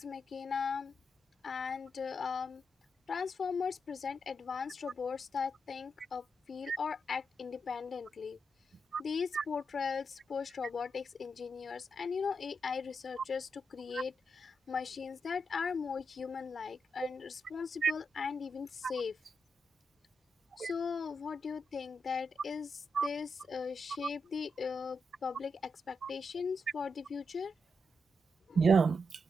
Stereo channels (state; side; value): normal; both; correlation 0.84